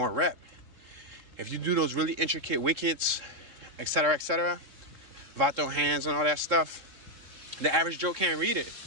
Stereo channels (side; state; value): left; late; 3.8 ms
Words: rep. If you do those really intricate wickets, etc., vato hands and all that stuff, the average Joe can't read it.